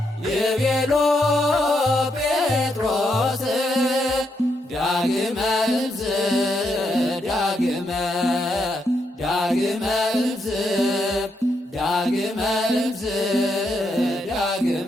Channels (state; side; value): normal; both; correlation 0.79